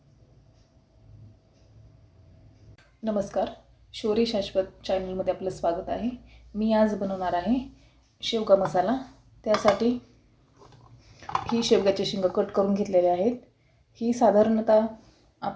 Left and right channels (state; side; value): identical; both; correlation 1.00